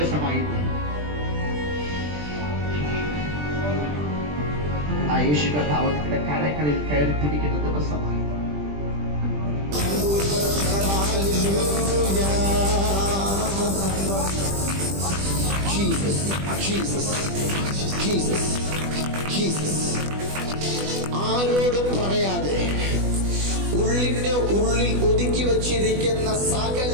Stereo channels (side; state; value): left; late; 20 ms